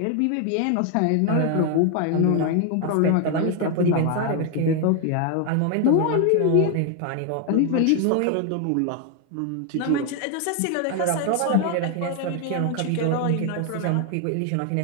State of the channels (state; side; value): different; both; correlation 0.01